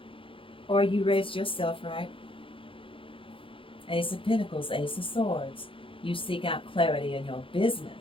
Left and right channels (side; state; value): right; late; 0.25 ms